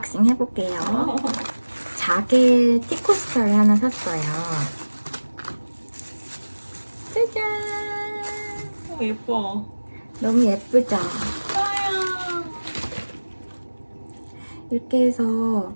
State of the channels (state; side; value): inverted; both; correlation -1.00